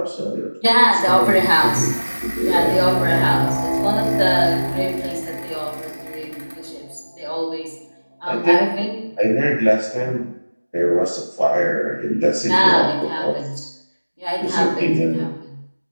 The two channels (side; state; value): both; inverted; correlation -1.00